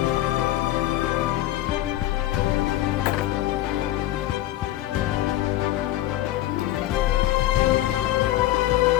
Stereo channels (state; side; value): quieter; right; 14.8 dB